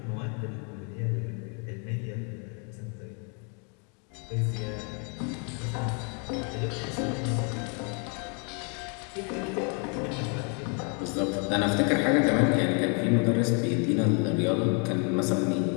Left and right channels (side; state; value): right; quieter; 38.0 dB